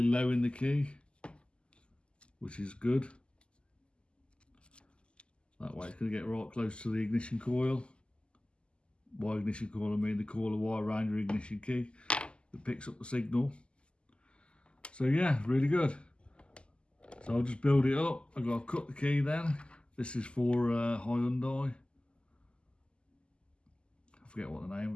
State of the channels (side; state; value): right; late; 0.052 ms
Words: low in the key, which is good. That way it's going to get right close to the ignition coil. By ignition coil I mean the coil of wire around your ignition key that picks up the signal. So yeah, really good. So I'll just build it up. I've got to cut the key then. This is for Hyundai. I forget what the